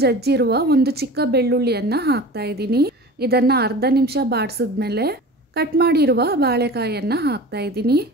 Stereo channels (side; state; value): both; normal; correlation 0.37